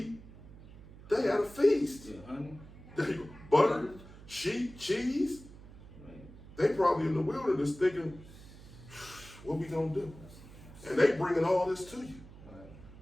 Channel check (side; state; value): right; noise; hum, 18 dB below the sound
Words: They had a feast. Yeah, honey. There you go. Butter, sheep, cheese. Right. They probably in the wilderness thinking, what we gonna do? And they bringing all this to you. Right.